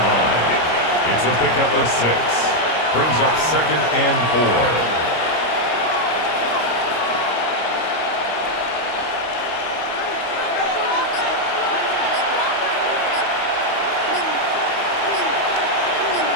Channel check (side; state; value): right; late; 25 ms